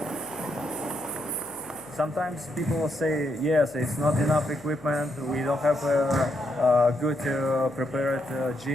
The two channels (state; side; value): noise; left; hum, 26 dB below the sound